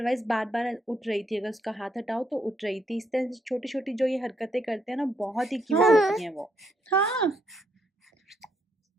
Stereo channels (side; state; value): both; normal; correlation 0.74